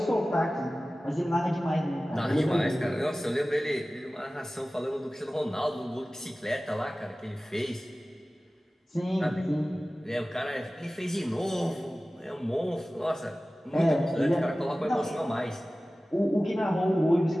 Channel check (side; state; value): both; normal; correlation 0.97